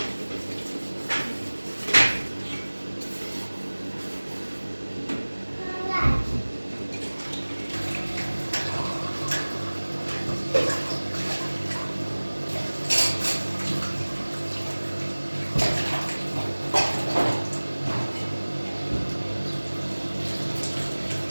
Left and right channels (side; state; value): both; inverted; correlation -1.00